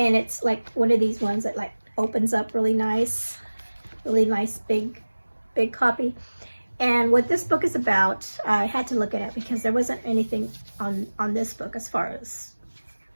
it's like one of these ones that like opens up really nice big copy. And what this book is about, I had to look at it because there wasn't anything on this book as far as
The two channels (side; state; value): both; inverted; correlation -1.00